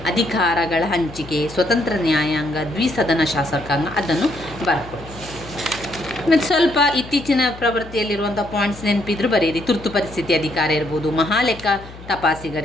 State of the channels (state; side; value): noise; left; hum, 17 dB below the sound